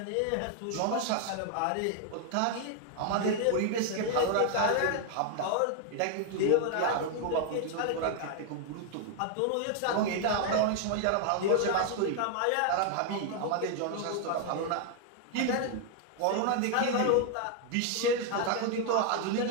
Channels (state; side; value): different; both; correlation 0.00